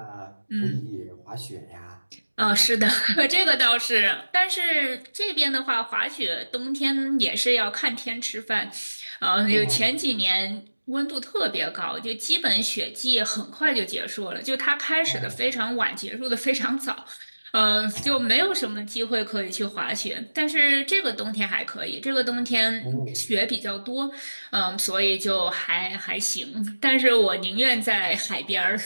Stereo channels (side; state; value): both; inverted; correlation -1.00